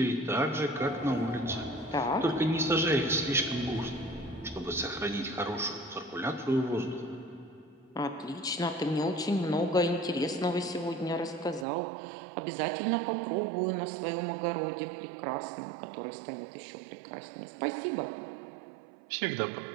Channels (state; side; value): drops out; left; at 11.7 s